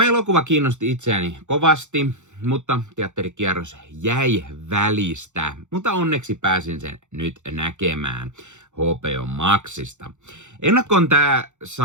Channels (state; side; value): late; left; 0.84 ms